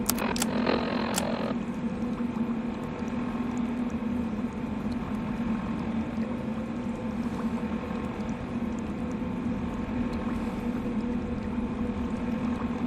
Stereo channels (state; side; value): identical; both; correlation 1.00